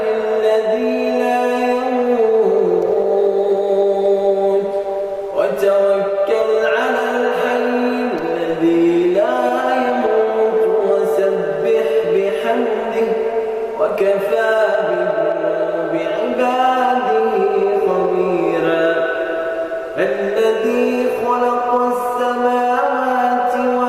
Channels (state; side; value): identical; both; correlation 1.00